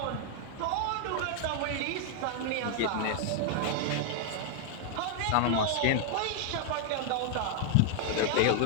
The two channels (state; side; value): different; both; correlation 0.00